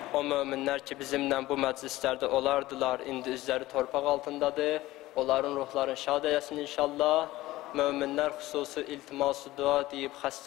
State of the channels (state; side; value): quieter; right; 17.3 dB